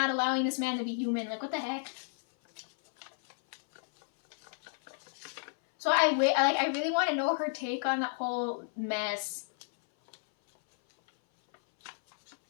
allowing this man to be human? Like, what the heck? So I really want to know her take on that whole mess.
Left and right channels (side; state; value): right; silent; 57 dB below the other